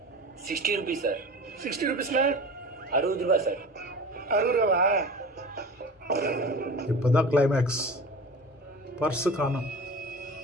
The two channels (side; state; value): both; normal; correlation 0.35